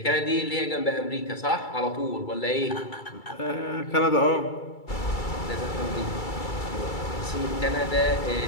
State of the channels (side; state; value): right; late; 2.3 ms